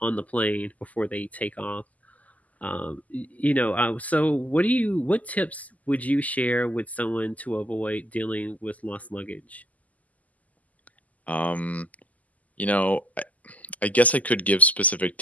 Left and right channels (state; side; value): late; right; 0.075 ms